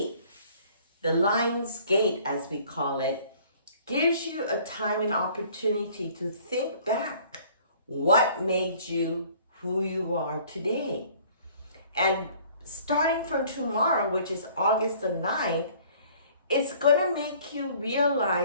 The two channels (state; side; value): inverted; both; correlation -0.54